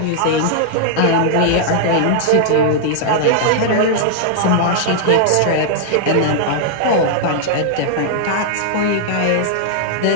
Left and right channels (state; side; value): different; both; correlation -0.01